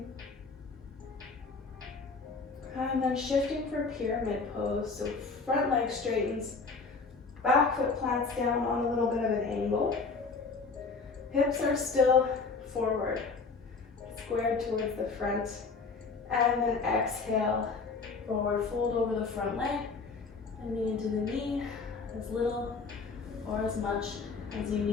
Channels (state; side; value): quieter; right; 4.4 dB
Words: And then shifting for pyramid pose. So front leg straightens, back foot plants down on a little bit of an angle. Hips are still forward, squared towards the front. And then exhale, forward fold over the front leg and knee into the knee, as little or as much as you